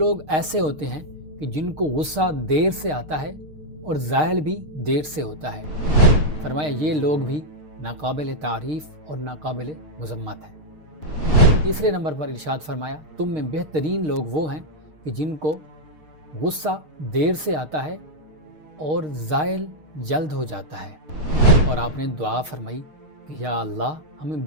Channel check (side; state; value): left; late; 6.5 ms